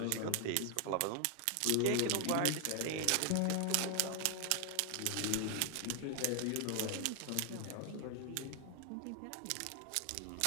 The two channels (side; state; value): both; different; correlation 0.00